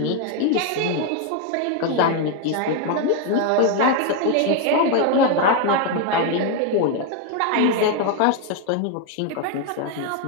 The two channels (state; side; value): different; both; correlation 0.01